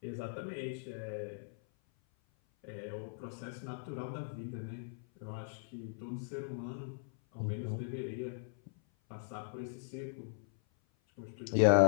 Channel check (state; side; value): silent; right; 52 dB below the other